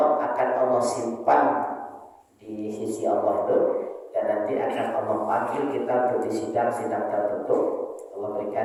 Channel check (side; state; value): both; identical; correlation 1.00